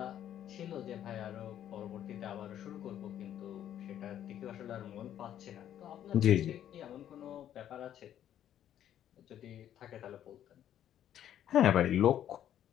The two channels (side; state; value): right; quieter; 10.8 dB